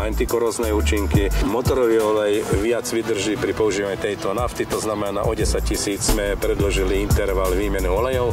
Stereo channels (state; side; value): identical; both; correlation 1.00